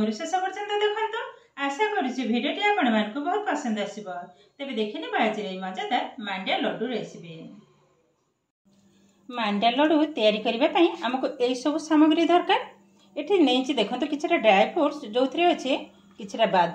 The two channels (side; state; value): both; identical; correlation 1.00